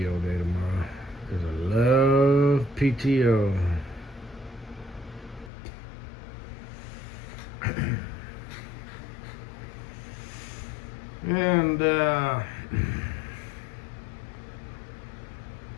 day tomorrow. Because I love PTO. And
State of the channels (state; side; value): drops out; right; at 5.5 s